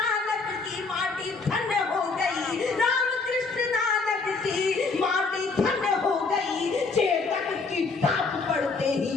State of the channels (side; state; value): right; quieter; 4.2 dB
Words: की माटी धन्य हो गई। रामकृष्ण नानक की माटी धन्य हो गई। चेतक की ताप पड़ते ही